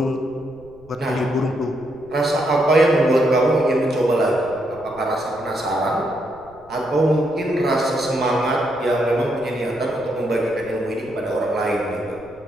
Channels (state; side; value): noise; right; rumble, 26 dB below the sound